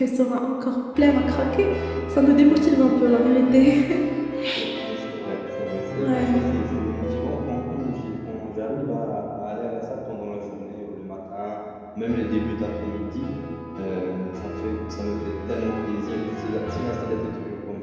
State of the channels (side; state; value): both; identical; correlation 1.00